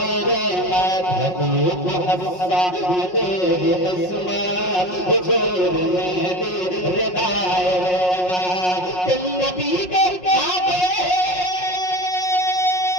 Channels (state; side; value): late; right; 5.5 ms